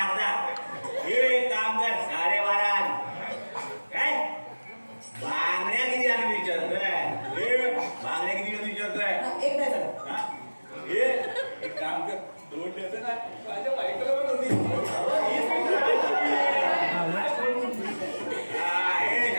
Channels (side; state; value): both; inverted; correlation -1.00